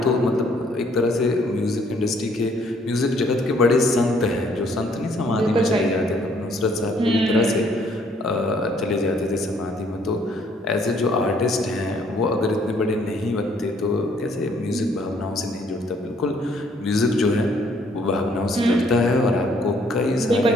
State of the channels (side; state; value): both; normal; correlation 0.64